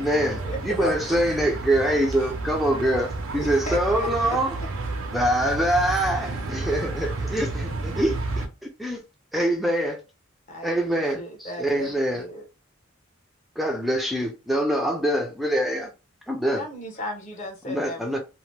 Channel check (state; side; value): normal; both; correlation 0.71